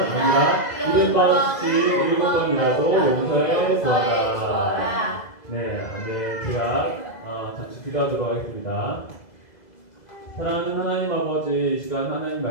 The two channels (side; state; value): right; late; 2.0 ms